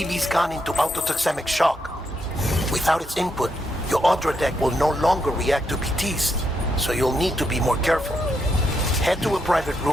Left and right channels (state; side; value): normal; both; correlation 0.80